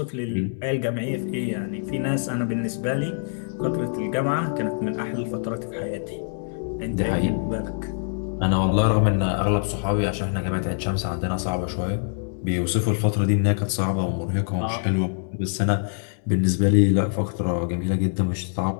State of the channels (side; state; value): right; silent; 62 dB below the other